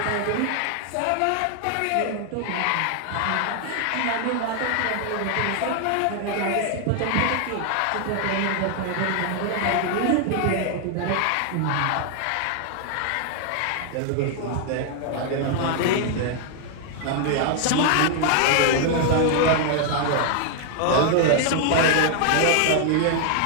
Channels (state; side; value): different; both; correlation 0.00